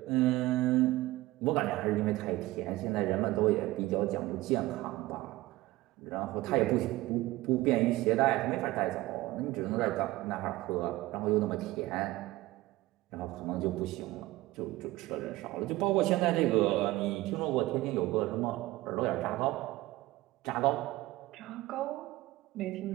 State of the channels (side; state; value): left; quieter; 18.3 dB